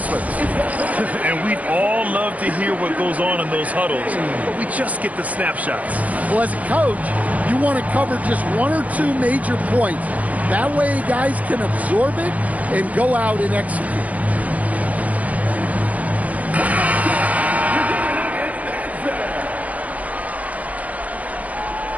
And we'd all love to hear what goes on in those huddles, but we just get the snapshots. Well, as a coach, you want to cover just 1 or 2 major points. That way guys can absorb it and go out and execute.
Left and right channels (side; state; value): left; late; 0.072 ms